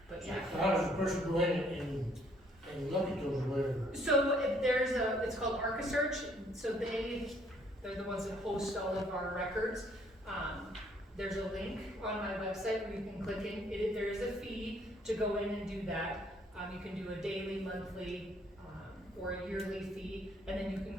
but yeah. So how does the person go in and look at those or whatever? So it's called ArcaSearch. So they're the ones that host all of our records. There's a link on my website where you can click in. There is a fee to go in and do that. You can do a daily, monthly, or a yearly fee, and then you can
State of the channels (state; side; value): normal; both; correlation 0.64